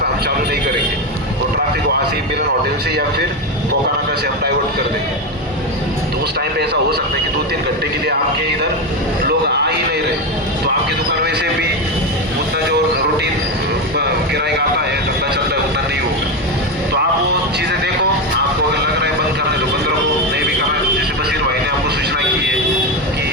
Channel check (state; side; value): normal; both; correlation 0.13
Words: हम चालू नहीं करेंगे, वो ट्रैफिक वहाँ से मिलन होटल से या फिर कोकानाका से हम डाइवर्ट कर देंगे। तो उस टाइम पे ऐसा हो सकता है कि 2-3 घंटे के लिए आपके इधर लोग आ ही नहीं रहे, तो आपकी दुकान वैसे भी उतना जो रूटीन किराया आता है धंधा चलता है उतना नहीं होगा। तो आप वो चीज़ें देखो, आपको अगर लग रहा है बंद करने तो बंद रखो, नहीं भी करना है जैसे बशीर भाई ने आपको सूचना की है कि